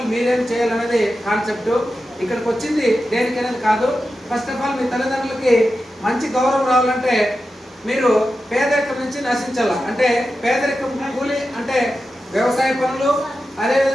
మీరేం చేయాలనేది కాన్సెప్ట్. ఇక్కడికి వచ్చింది దేనికనేది కాదు. ఫస్ట్ ఆఫ్ ఆల్ మీ తల్లిదండ్రులకి మంచి గౌరవం రావాలంటే మీరు పేదరికం నుంచి నశించాల. అంటే పేదరికం కూలి అంటే వ్యవసాయ పనులు,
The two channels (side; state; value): both; normal; correlation 0.91